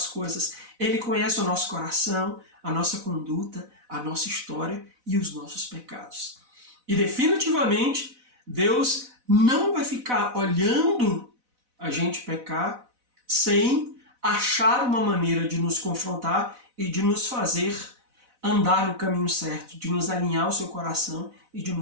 coisas. Ele conhece o nosso coração, a nossa conduta, a nossa história e os nossos pecados. E definitivamente, Deus não vai ficar olhando a gente pecar sem achar uma maneira de nos confrontar e de nos fazer andar no caminho certo, de nos alinhar ao seu coração e de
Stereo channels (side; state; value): left; late; 4.0 ms